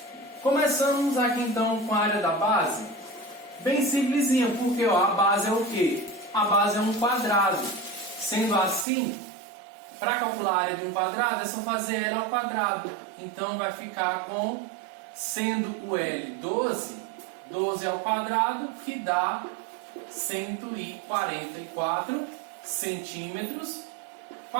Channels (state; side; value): drops out; left; at 8.8 s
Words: Começamos aqui então com a área da base. Bem simplesinha, porque ó, a base é o quê? A base é um quadrado. Sendo assim, para calcular a área de um quadrado, é só fazer L ao quadrado. Então vai ficar com, sendo o L 12, 12 ao quadrado, que dá 144 centímetros